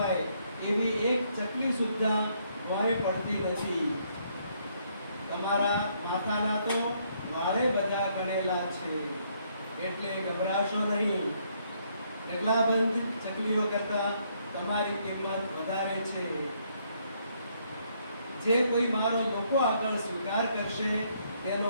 એવી એક ચકલી સુદ્ધા વારે પડતી નથી. તમારા માથાના તો વાળે બધા ગણેલા છે, એટલે ગભરાશો નહીં. ઢગલાબંધ ચકલીઓ કરતા તમારી કિંમત વધારે છે. જે કોઈ મારો લોકો આગળ સ્વીકાર કરશે તેનો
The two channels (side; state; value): both; inverted; correlation -0.70